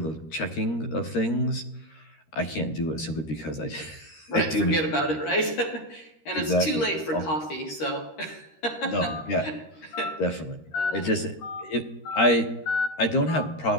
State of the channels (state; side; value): late; right; 13 ms